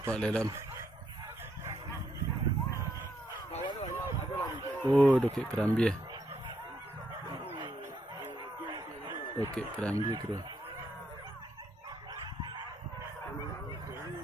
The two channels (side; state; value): both; normal; correlation 0.76